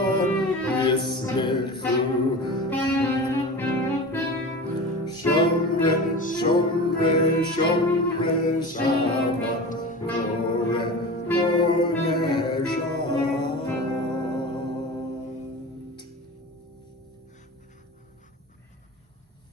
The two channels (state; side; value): normal; both; correlation 0.32